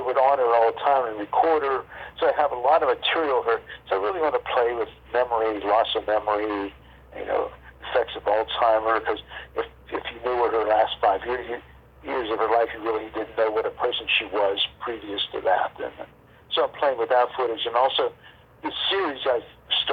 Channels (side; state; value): both; identical; correlation 1.00